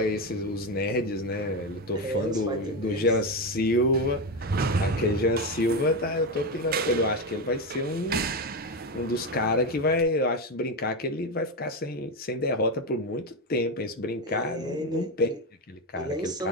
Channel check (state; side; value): normal; both; correlation 0.13